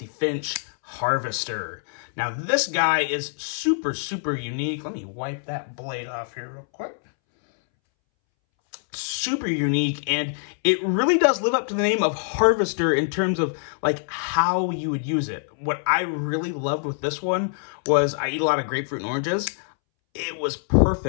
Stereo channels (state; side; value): silent; right; 62 dB below the other